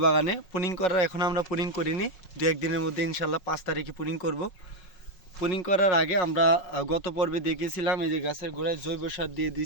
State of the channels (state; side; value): late; right; 5.5 ms